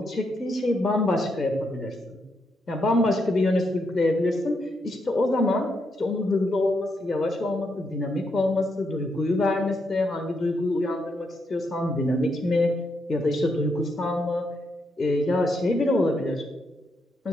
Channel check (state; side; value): normal; both; correlation 0.80